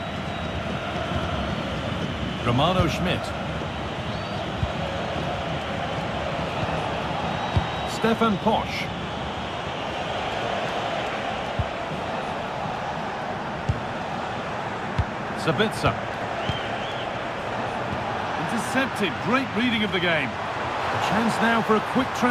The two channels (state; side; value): identical; both; correlation 1.00